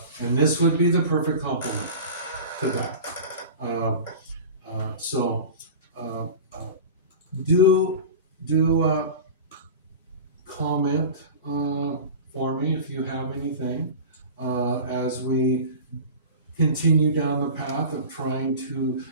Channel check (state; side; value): inverted; both; correlation -0.33